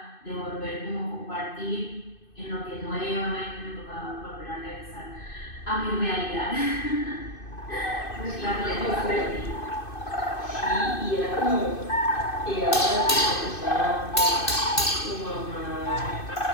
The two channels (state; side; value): late; right; 2.6 ms